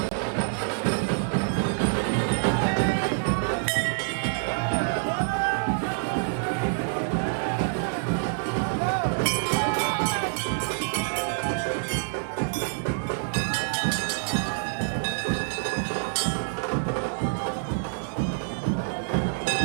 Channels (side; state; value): left; silent; digital silence